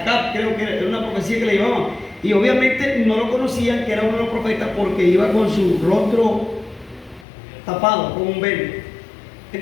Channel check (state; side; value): drops out; right; at 7.2 s